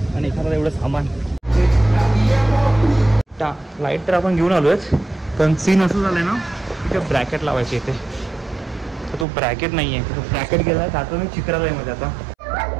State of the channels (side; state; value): left; drops out; at 9.2 s